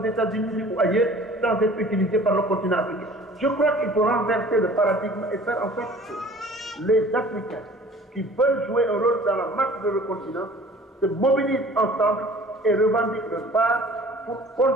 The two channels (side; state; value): both; normal; correlation 0.48